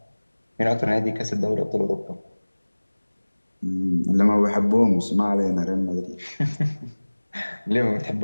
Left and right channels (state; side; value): inverted; both; correlation -1.00